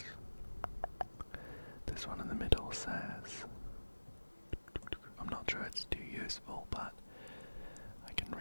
This one in the middle says, I'm not sure it's too useful, but I can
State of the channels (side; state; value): both; inverted; correlation -1.00